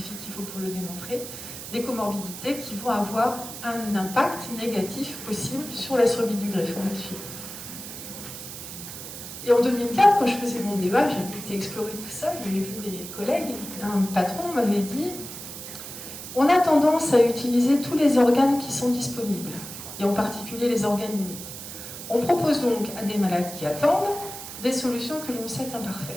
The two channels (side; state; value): right; noise; hiss, 10 dB below the sound